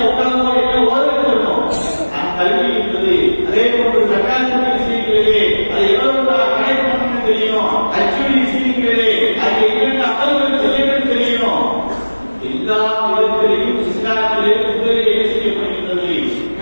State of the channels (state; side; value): inverted; both; correlation -1.00